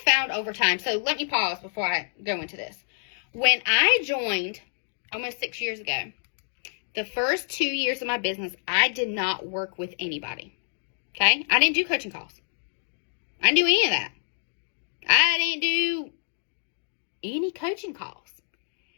found over time, so let me pause before I go into this. When I joined almost 6 years ago, the first 2 years of my business, I did not work with anybody. Okay? I didn't do coaching calls. I didn't do any of that. I didn't do any coaching calls.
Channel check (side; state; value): right; silent; digital silence